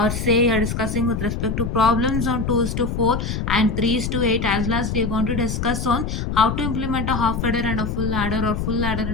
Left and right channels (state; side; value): noise; left; rumble, 2 dB below the sound